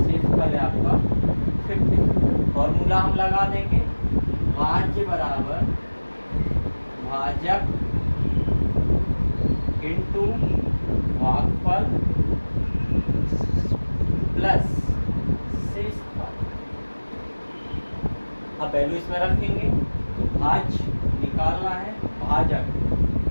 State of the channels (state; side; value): inverted; both; correlation -1.00